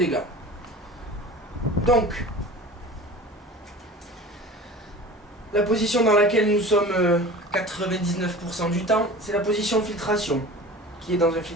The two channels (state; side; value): normal; both; correlation 0.38